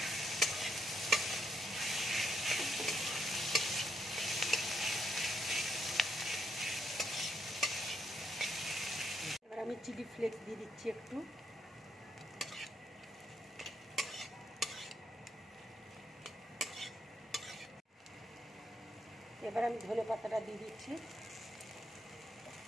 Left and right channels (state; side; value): normal; both; correlation 0.77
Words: এবার আমি চিলি ফ্লেক্স দিয়ে দিচ্ছি একটু। এবার আমি ধনে পাতাটা দিয়ে দিচ্ছি।